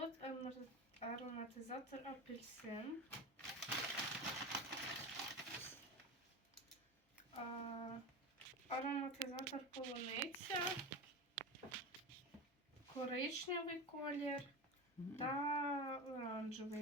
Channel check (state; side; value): normal; both; correlation 0.24